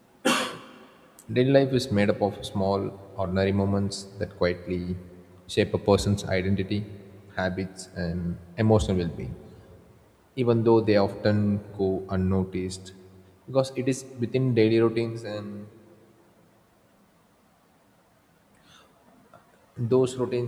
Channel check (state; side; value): identical; both; correlation 1.00